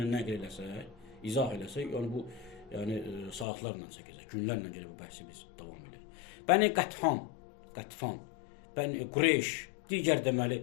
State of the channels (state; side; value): drops out; right; at 3.5 s